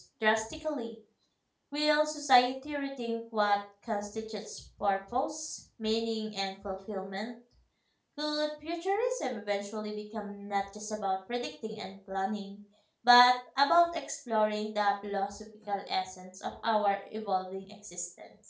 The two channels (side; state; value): both; identical; correlation 1.00